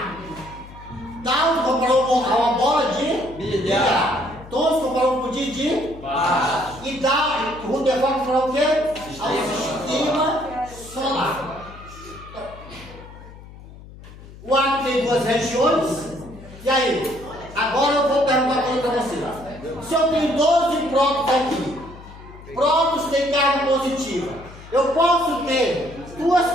Tal comparou uma bola de bilhar. Todos comparou com o de baixo. E o Rutherford comparou o quê? Ao sistema solar. O átomo tem duas regiões. E aí? Agora eu vou perguntar uma coisa para vocês. Se eu tenho 12 prótons aqui, prótons têm carga positiva, eu posso ter duas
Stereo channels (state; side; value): noise; left; hum, 18 dB below the sound